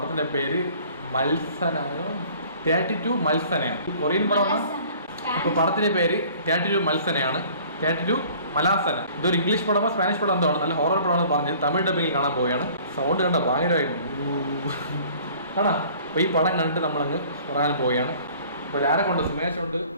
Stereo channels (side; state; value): both; inverted; correlation -0.51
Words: പേര് മത്സന, 32 മത്സനയാണ്. കൊറിയൻ പടമാണ്. അപ്പോൾ പടത്തിന്റെ പേര് 32 മത്സനയാണ്, 32 മലാസന. ഇതൊരു ഇംഗ്ലീഷ് പടമോ സ്പാനിഷ് പടം എന്തോ ആണ്. നല്ല ഹൊറർ പടമാണെന്ന് പറഞ്ഞത് തമിഴ് ഡബിങ്ങിൽ കാണാൻ പോവുകയാണ്. സൗണ്ട് കണ്ട ഭയങ്കരമായിട്ട് കാണാം. അപ്പോൾ ഈ പടം കണ്ടിട്ട് നമ്മളങ്ങ് പറയാൻ പോവുകയാണ്. അപ്പോൾ ആരെ കൊണ്ട്? സുമേഷ് ഉണ്ട്,